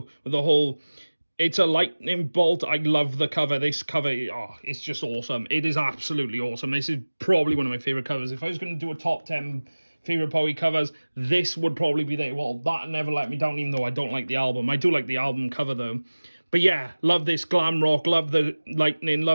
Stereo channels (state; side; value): inverted; both; correlation -1.00